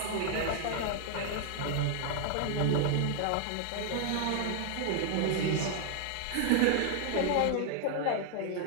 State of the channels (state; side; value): different; both; correlation 0.00